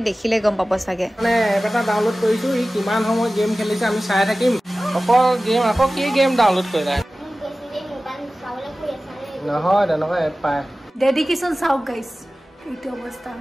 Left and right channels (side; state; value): both; normal; correlation 0.96